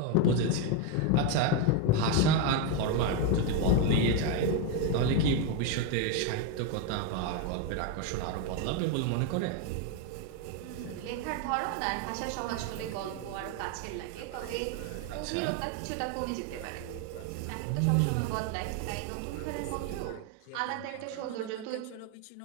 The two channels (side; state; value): both; different; correlation 0.02